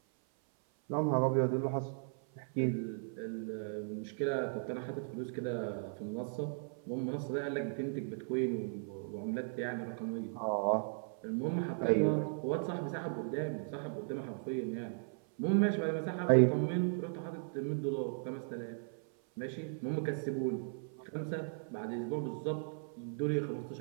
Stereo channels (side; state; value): left; silent; 53 dB below the other